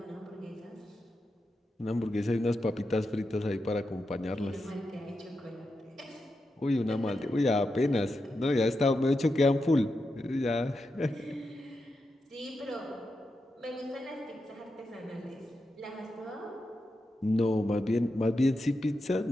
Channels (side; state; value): both; normal; correlation 0.88